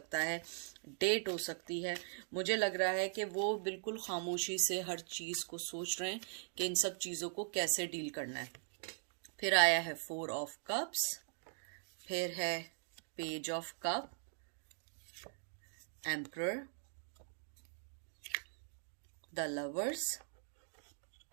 है, डेट हो सकती है। मुझे लग रहा है कि वो बिल्कुल खामोशी से हर चीज़ को सोच रहे हैं कि इन सब चीज़ों को कैसे डील करना है। फिर आया है 4 ऑफ कप्स, फिर है page of cup, emperor, the lovers,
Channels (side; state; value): left; silent; digital silence